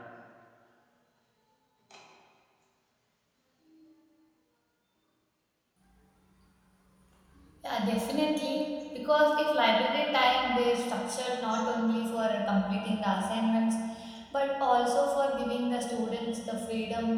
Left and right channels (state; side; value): identical; both; correlation 1.00